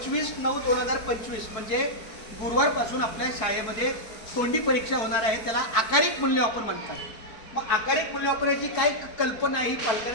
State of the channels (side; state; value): right; late; 4.5 ms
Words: म्हणजे गुरुवारपासून आपल्या शाळेमध्ये तोंडी परीक्षा होणार आहे. त्याला आकारिक मूल्यमापन म्हणतात. मग आकारिक मूल्यमापनाची काय कल्पना ही